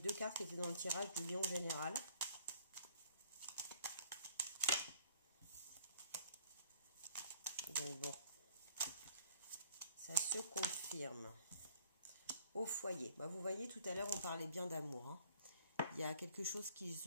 cartes qui étaient dans le tirage du lion général. Donc bon, ça se confirme. Au foyer. Bah, vous voyez, tout à l'heure, on parlait bien d'amour. Hein. Il y a quelque chose qui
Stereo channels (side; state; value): both; inverted; correlation -0.56